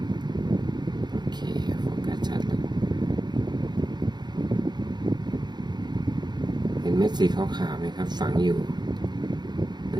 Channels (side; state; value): left; late; 0.21 ms